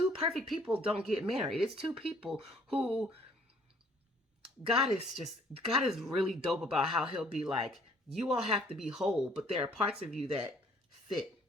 perfect people don't get married. It's two people who God is really dope about how he'll be like, you all have to be whole, but there are parts of you that fit.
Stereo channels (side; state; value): both; normal; correlation 0.60